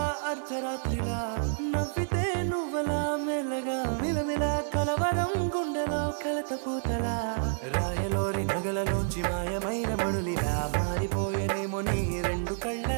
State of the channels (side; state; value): left; silent; 58 dB below the other